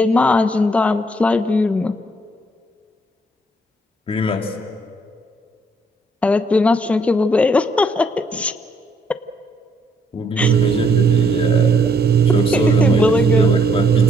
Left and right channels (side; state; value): both; normal; correlation 0.69